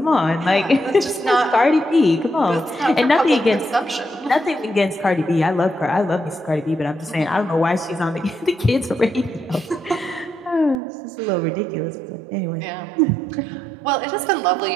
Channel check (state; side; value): drops out; left; at 10.8 s